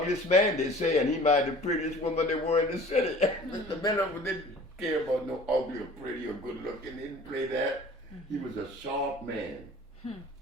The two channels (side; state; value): both; normal; correlation 0.46